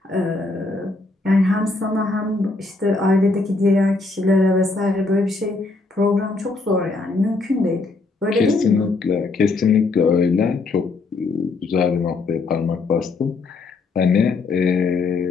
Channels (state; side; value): quieter; right; 3.6 dB